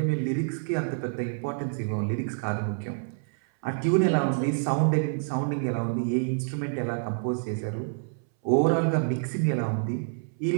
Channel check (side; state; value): left; silent; 60 dB below the other